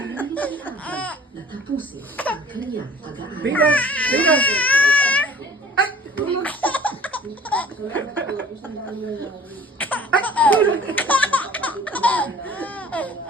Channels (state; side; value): normal; both; correlation 0.50